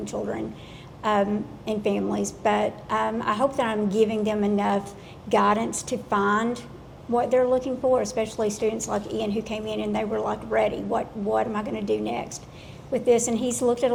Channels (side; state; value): both; identical; correlation 1.00